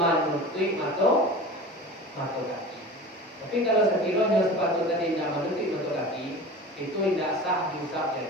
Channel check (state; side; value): normal; both; correlation 0.36